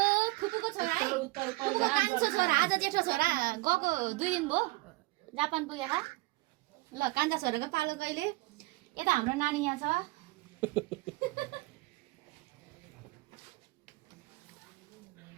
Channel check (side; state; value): left; quieter; 21.6 dB